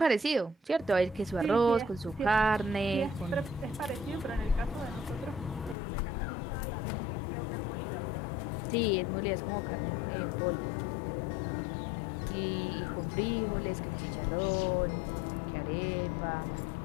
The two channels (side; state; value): right; drops out; at 5.8 s